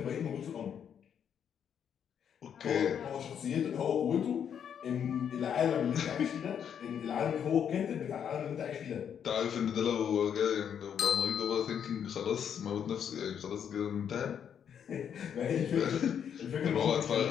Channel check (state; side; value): quieter; right; 8.3 dB